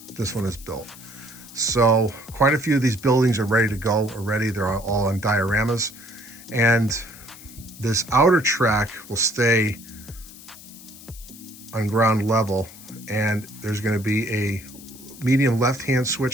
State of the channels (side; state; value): left; noise; hiss, 18 dB below the sound